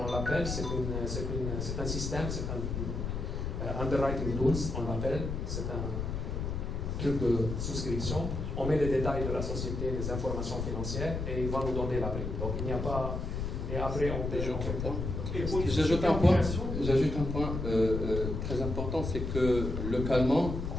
on l'appelle, c'est un système, c'est un underwriting tools, on l'appelle, c'est un truc de souscription. On met les détails de la société, les informations financières, et il va nous donner la prime. Donc, il n'y a pas... Et après, on paye. J'ajoute un point très important, c'est que localement,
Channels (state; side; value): noise; left; rumble, 3 dB below the sound